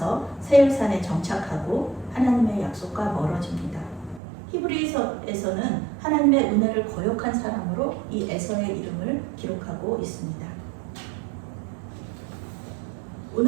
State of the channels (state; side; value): drops out; left; at 4.2 s